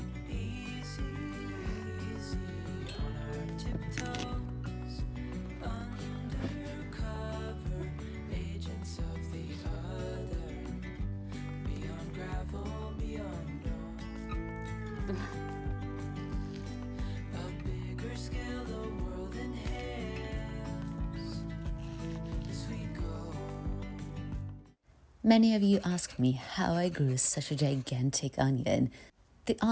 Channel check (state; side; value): identical; both; correlation 1.00